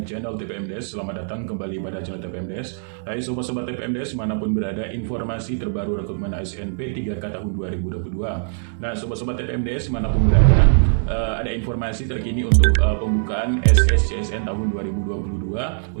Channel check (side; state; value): left; silent; 64 dB below the other